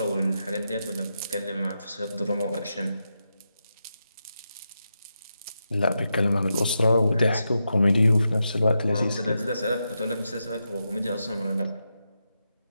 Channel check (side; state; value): both; inverted; correlation -0.87